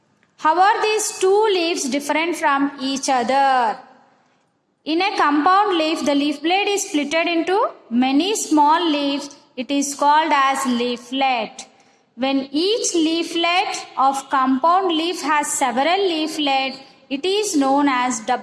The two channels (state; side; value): identical; both; correlation 1.00